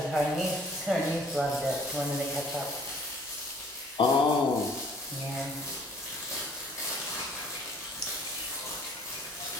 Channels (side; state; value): both; normal; correlation 0.56